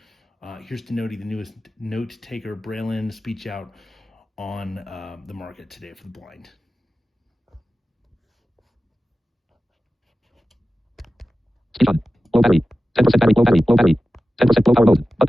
here's to Notey, the newest Notetaker Braille-in speech out on the market today for the blind. Speech on. Low battery. 10% battery. Low battery. Low battery. 10% low power mode.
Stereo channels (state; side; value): normal; both; correlation 0.94